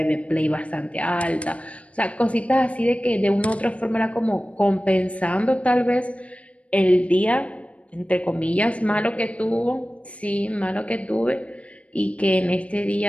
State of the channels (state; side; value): late; right; 0.064 ms